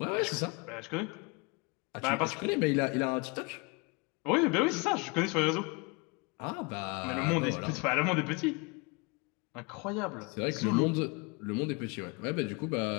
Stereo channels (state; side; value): quieter; right; 29.5 dB